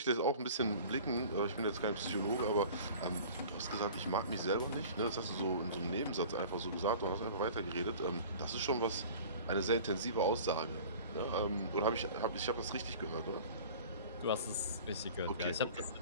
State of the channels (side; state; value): both; inverted; correlation -0.43